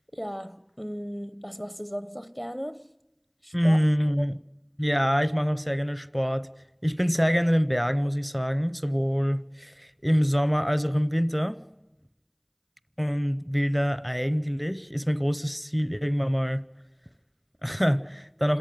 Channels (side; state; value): both; identical; correlation 1.00